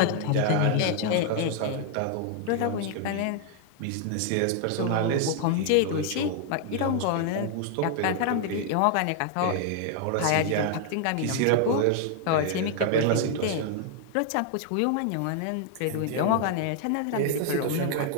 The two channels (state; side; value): different; both; correlation 0.00